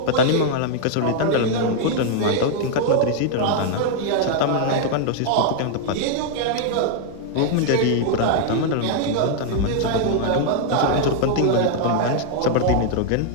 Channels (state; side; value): different; both; correlation 0.00